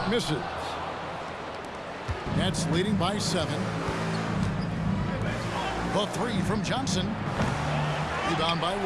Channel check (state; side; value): identical; both; correlation 1.00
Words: misses. Nets leading by 7. The 3 from Johnson. Rebound by